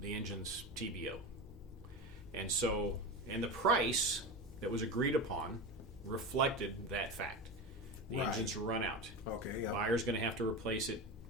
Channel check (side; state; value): both; normal; correlation 0.24